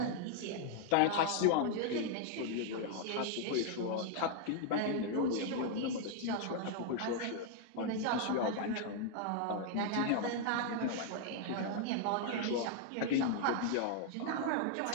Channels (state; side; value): different; both; correlation 0.00